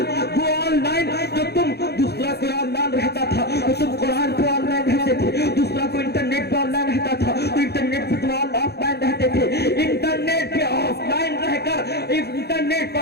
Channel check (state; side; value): late; right; 0.47 ms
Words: وہ آن لائن، جو تم دوسرا کوئی آن لائن رہتا تھا تو تم قرآن پہ آن لائن رہتے تھے، دوسرا کوئی انٹرنیٹ پہ آن لائن رہتا تھا تو انٹرنیٹ پہ تم آف لائن رہتے تھے. انٹرنیٹ پہ آف لائن رہ کر، انٹرنیٹ